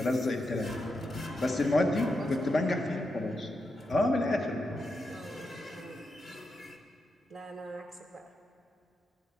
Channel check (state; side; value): normal; both; correlation 0.86